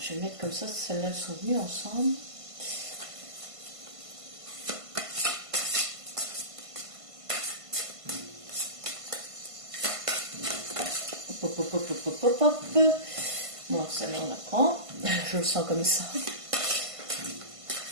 vais mettre comme ça, celles-là sont venues ensemble. Hop, hop, hop, hop, hop, hop, hop. Bon, celle-là on la prend. Je le sens comme ça.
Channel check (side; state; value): left; late; 1.5 ms